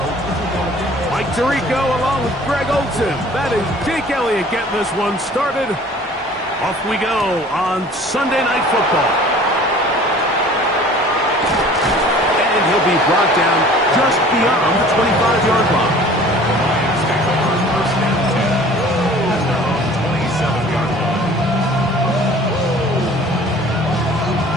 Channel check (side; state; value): both; normal; correlation 0.48